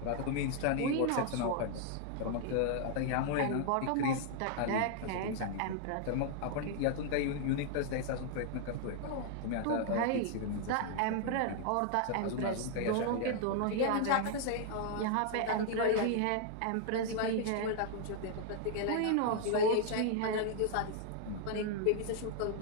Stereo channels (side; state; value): both; different; correlation 0.00